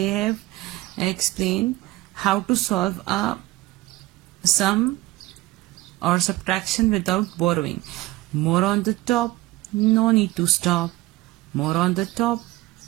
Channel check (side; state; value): left; quieter; 18.7 dB